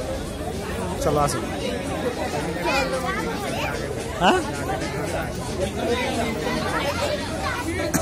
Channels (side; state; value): both; identical; correlation 1.00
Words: চলো আসি। হ্যাঁ